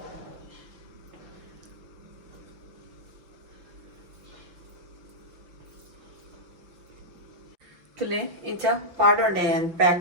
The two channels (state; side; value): late; left; 5.9 ms